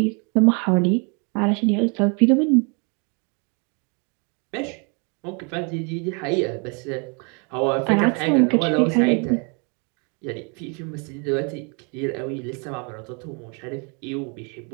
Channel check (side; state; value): left; quieter; 35.1 dB